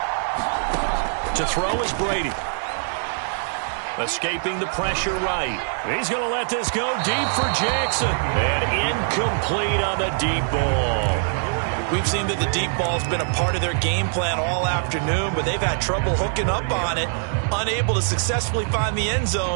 To throw is Brady. Escaping the pressure right. He's going to let this go deep for Jackson. And incomplete on the deep ball. We've seen that the deep ball's been a part of their game plan all afternoon, but they've had trouble hooking up on it, unable to successfully find the end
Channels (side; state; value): left; silent; 63 dB below the other